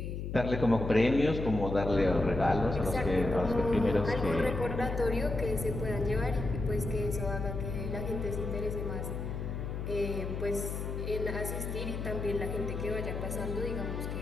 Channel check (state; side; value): noise; left; hum, 4 dB below the sound